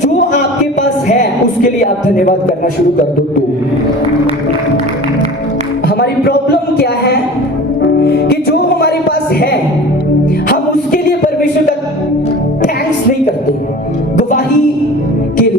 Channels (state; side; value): normal; both; correlation 0.39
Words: आपके पास है उसके लिए आप धन्यवाद करना शुरू कर दो। तो हमारी प्रॉब्लम क्या है कि जो हमारे पास है हम उसके लिए परमेश्वर का थैंक्स नहीं करते। गवाही के